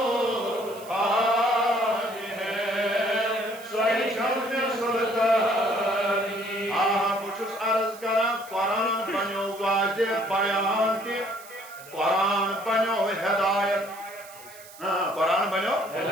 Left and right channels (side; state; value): right; noise; hiss, 19 dB below the sound